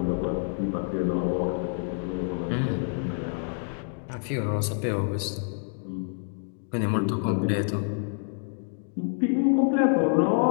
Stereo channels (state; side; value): silent; right; 60 dB below the other